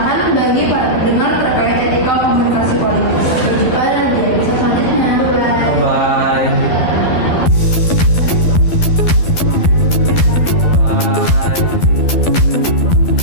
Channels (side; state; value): right; late; 12 ms